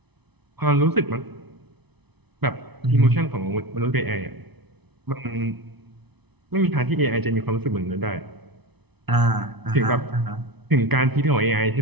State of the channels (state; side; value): late; left; 0.99 ms